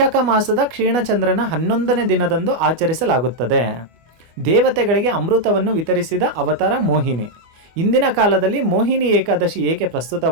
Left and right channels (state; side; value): late; left; 25 ms